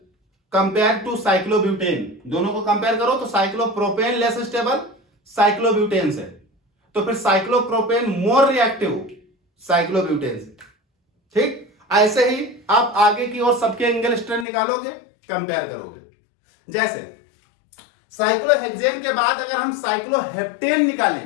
compare to cyclobutane, दोनों को कंपेयर करो तो साइक्लोप्रोपेन लेस स्टेबल साइक्लोब्यूटेन से, तो फिर साइक्लोप्रोपेन मोर रिएक्टिव साइक्लोब्यूटेन से। ठीक, ऐसे ही आप आगे की ओर सबके एंगल स्ट्रेन निकालोगे, कंपेयर करोगे। जैसे साइक्लोहेक्सेन के बाद अगर हम साइक्लोहेप्टेन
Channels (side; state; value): right; drops out; at 14.5 s